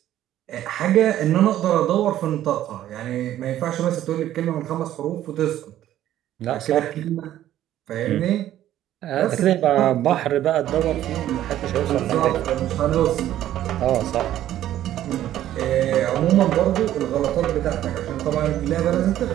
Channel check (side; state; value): left; quieter; 12.6 dB